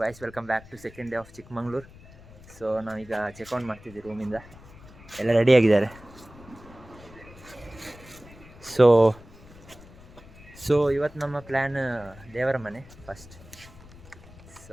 guys, welcome back to second day of Chikmagalur. So ನಾವೀಗ checkout ಮಾಡ್ತಿದ್ದೀವಿ ರೂಮಿಂದ. ಎಲ್ಲ ರೆಡಿಯಾಗಿದ್ದಾರೆ. ಸೊ ಇವತ್ತು ನಮ್ಮ ಪ್ಲ್ಯಾನ್ ದೇವರ ಮನೆ first.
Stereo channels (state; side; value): noise; left; rumble, 20 dB below the sound